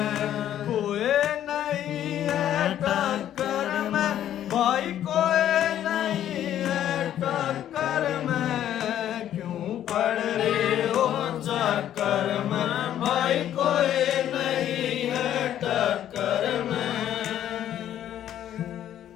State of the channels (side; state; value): right; quieter; 11.2 dB